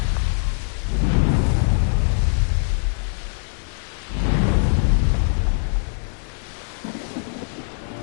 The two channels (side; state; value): right; silent; 61 dB below the other